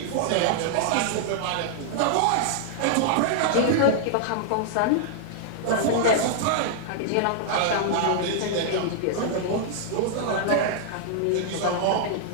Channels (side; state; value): both; different; correlation -0.01